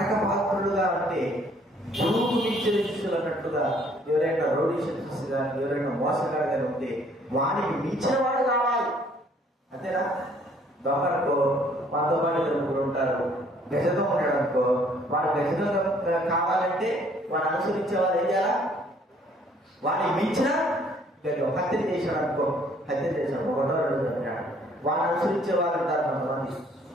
పాత్రులుగా అంటే గురువుకు మించిన శిష్యులు అన్నట్టుగా ఎవరైనా రౌడీ శిష్యులు కానీ ఎవరైనా మోసగాడు కానీ ఉంటే వానికి మించిన వాడు కావాలి. అంతేనా? దొంగనుకో మనతో పాటు దొంగలు ఉంటారు. గజదం ఉన్నాడు అనుకో, వాడు గజదం కావాలంటే వాడు అనుసరించే వాళ్ళు ఏం చేయాలా? వాడిని మించిన హత్య చేశాడు అనుకో, హత్య చేశాడు, ఒకటో రెండు చంపాడు, వాడిని అనుసరించే వాళ్ళు ఉంటారు. కొంతమంది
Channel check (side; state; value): both; normal; correlation 0.61